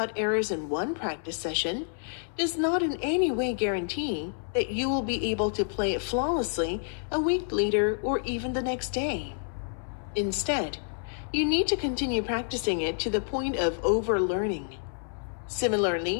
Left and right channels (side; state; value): right; silent; 59 dB below the other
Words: errors in one practice session does not in any way guarantee that you will be able to play it flawlessly a week later or even the next day. Instead, you need to continue practicing it to the point of overlearning.